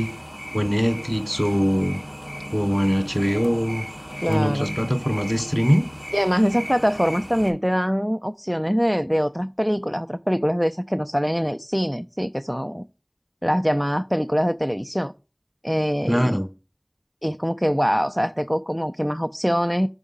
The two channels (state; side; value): identical; both; correlation 1.00